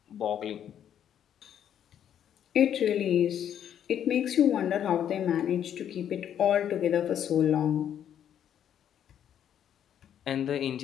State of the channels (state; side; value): quieter; right; 9.7 dB